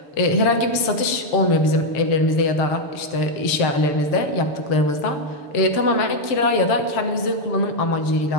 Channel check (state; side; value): late; right; 6.9 ms